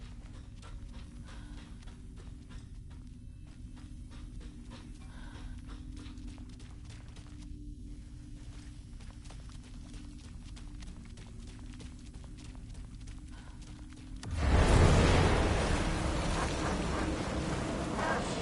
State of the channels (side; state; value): both; identical; correlation 1.00